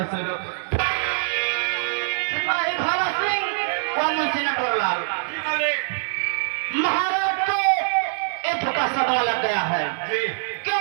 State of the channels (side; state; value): left; silent; digital silence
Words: सेना सिपाही भोला सिंह और मुंशी नटवरलाल, महाराज को एक धोखा सदमा लग गया है,